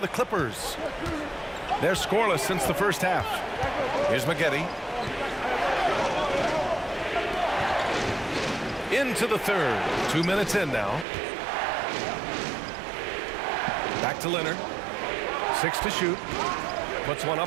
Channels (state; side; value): drops out; left; at 11.1 s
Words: the Clippers. They're scoreless since the first half. Here's McGetty. Into the third. 2 minutes in now. Back to Leonard. 6 to shoot. Puts one